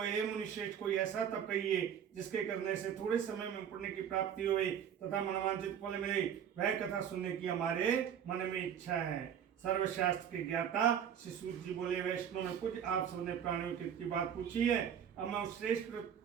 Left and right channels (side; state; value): left; quieter; 8.7 dB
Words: हे मुनिश्रेष्ठ, कोई ऐसा तप कहिए जिसके करने से थोड़े समय में पुण्य की प्राप्ति होवे तथा मनवांछित फल मिले। वह कथा सुनने की हमारे मन में इच्छा है। सर्वशास्त्र के ज्ञाता श्री सूत जी बोले, वैष्णव में कुछ आप सबने प्राणियों की बात पूछी है। अब मैं उस श्रेष्ठ व्रत